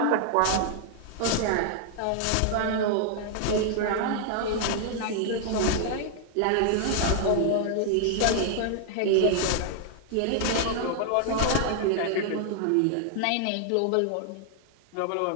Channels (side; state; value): both; different; correlation 0.00